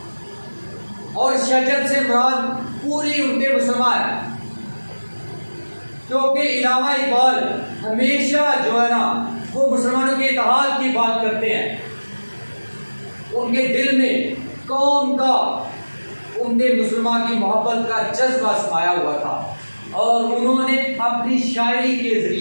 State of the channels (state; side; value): inverted; both; correlation -1.00